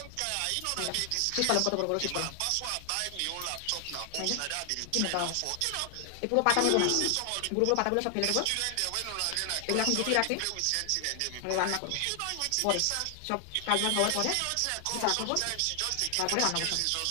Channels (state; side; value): different; both; correlation 0.00